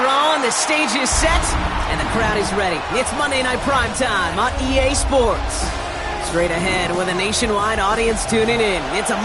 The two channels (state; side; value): identical; both; correlation 1.00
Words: on, the stage is set, and the crowd is ready. It's Monday Night Primetime on EA Sports. Straight ahead with a nationwide audience tuning in. It's a